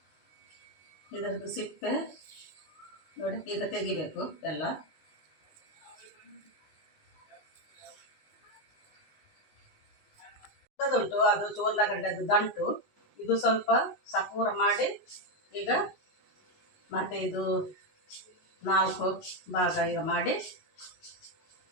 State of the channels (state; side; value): late; right; 19 ms